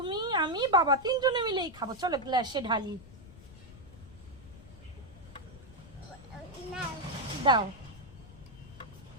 আমি বাবা তিনজনে মিলেই খাবো। চলো গ্লাসে ঢালি। না দাও।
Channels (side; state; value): left; noise; rumble, 18 dB below the sound